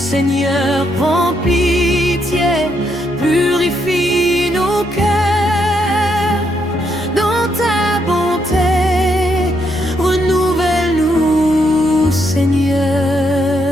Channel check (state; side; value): normal; both; correlation 0.76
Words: prends pitié, purifie nos cœurs. Dans ta bonté, renouvelle-nous, Seigneur.